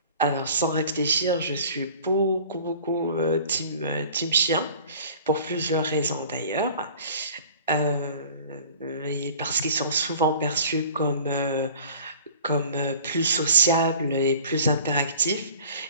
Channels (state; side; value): inverted; both; correlation -0.46